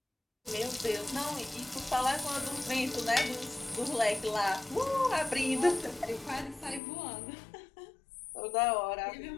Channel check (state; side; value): drops out; right; at 6.8 s